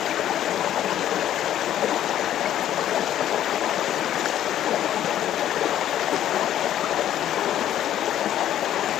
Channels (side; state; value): right; quieter; 11.5 dB